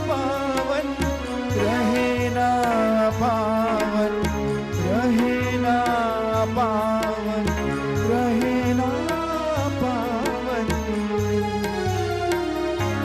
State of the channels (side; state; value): both; identical; correlation 1.00